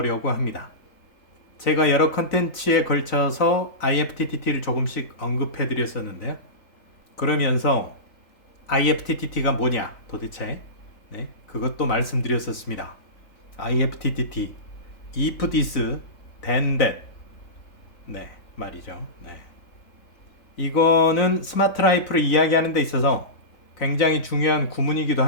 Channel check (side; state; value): right; late; 3.9 ms